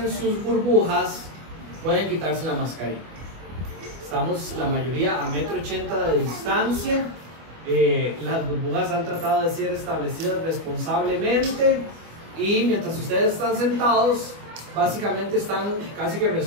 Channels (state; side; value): late; left; 25 ms